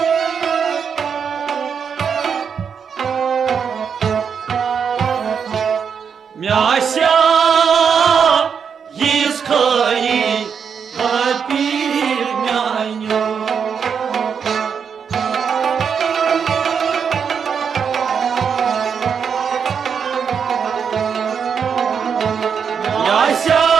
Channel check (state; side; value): quieter; left; 6.8 dB